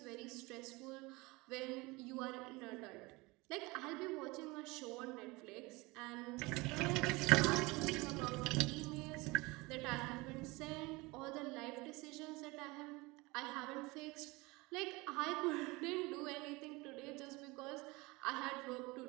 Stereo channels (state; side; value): quieter; left; 23.7 dB